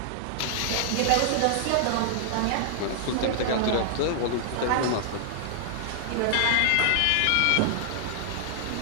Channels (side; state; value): both; different; correlation -0.01